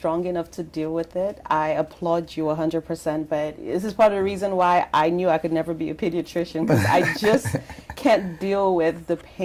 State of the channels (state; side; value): identical; both; correlation 1.00